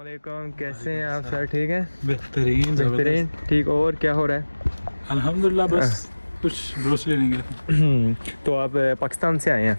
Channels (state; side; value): inverted; both; correlation -1.00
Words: कैसे हैं आप सर? ठीक हैं? बेहतरीन बेहतरीन। ठीक, और क्या हो रहा अल्हम्दुलिल्लाह। बस कुछ ग्रोसरी लेने गए थे। है? तो आप पाकिस्तान से आए हैं?